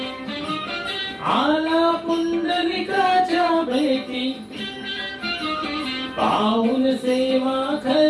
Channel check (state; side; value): identical; both; correlation 1.00